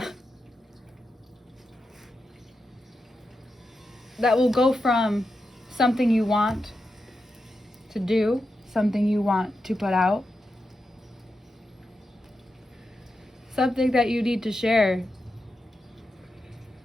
will go from something you want to do, something you want to put out, something that you need to share.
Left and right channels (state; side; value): normal; both; correlation 0.88